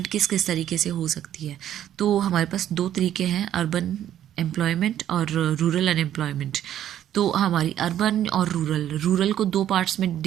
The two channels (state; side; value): quieter; left; 11.2 dB